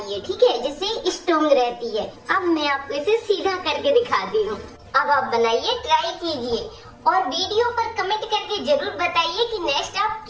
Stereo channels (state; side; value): identical; both; correlation 1.00